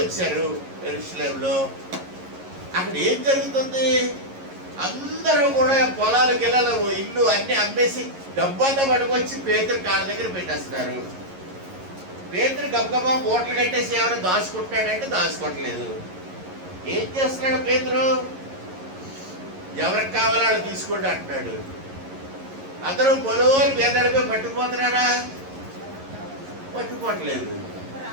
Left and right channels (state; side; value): late; left; 11 ms